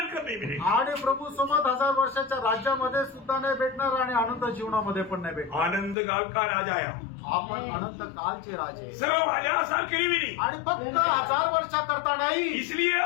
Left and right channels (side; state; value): right; drops out; at 6.0 s